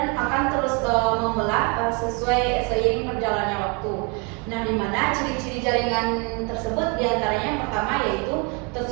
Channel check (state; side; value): quieter; left; 32.8 dB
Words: akan terus membelah sesuai seiring berjalannya waktu. Nah, di mana ciri-ciri jaringan tersebut diantaranya yang pertama yaitu